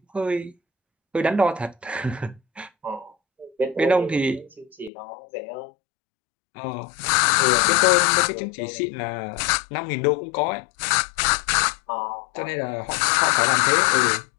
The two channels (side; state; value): right; drops out; at 4.9 s